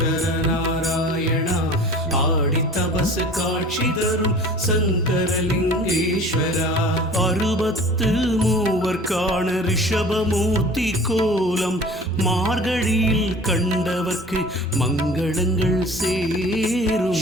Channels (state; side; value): normal; both; correlation 0.43